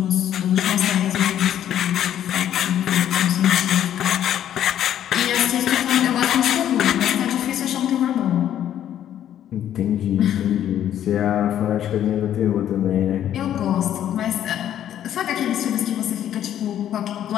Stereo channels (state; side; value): quieter; right; 10.8 dB